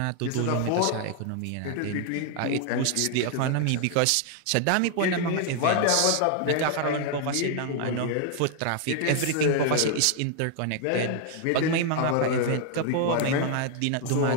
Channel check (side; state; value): both; different; correlation 0.00